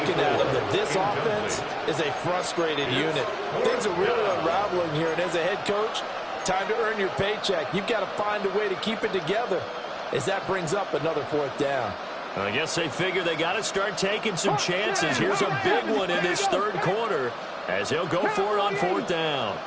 at him that this offense is a frustrated unit. Things are really unraveling here, and as a head coach, time to earn your paycheck. You've got to find a way to keep it together as that brings up another 4th down. I guess they figure they got to start taking some chances. Here's a big one in this 3rd quarter as he'll go for it on 4th down.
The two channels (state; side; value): identical; both; correlation 1.00